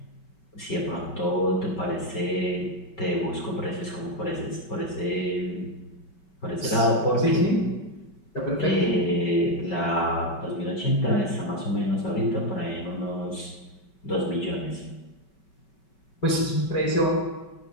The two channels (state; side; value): late; right; 5.3 ms